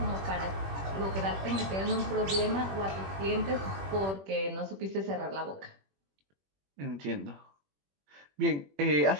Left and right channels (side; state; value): left; late; 21 ms